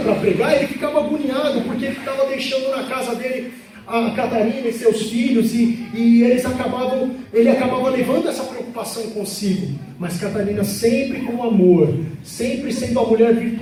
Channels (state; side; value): identical; both; correlation 1.00